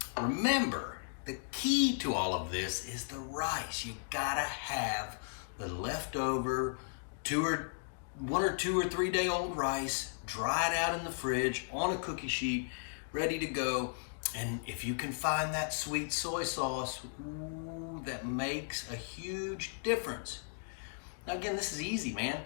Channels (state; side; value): silent; right; digital silence